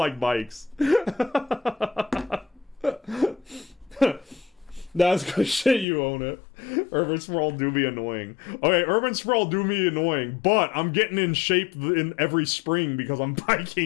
bikes. That's good shit, you own it. Urban sprawl do be annoying. Okay, urban sprawl do be annoying, but I'm getting in shape in every spring because I'm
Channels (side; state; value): right; drops out; at 5.9 s